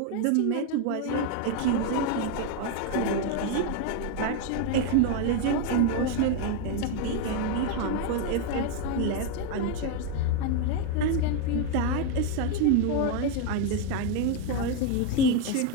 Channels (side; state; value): both; different; correlation 0.01